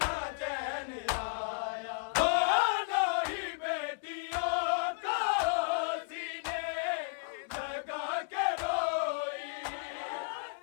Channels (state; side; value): silent; right; 55 dB below the other